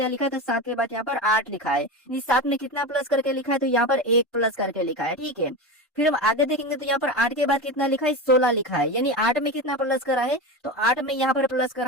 लिखा है, तो 7 के बाद यहाँ पर 8 लिखा है। इस 7 में कितना प्लस करके लिखा है, तो यहाँ पर 1 प्लस करके लिखा है। ठीक है, फिर हम आगे देखेंगे तो यहाँ पर 8 के बाद कितना लिखा है, 16 लिखा है। यानी 8 में कितना प्लस करा है, तो 8 में यहाँ पर प्लस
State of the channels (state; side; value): normal; both; correlation 0.23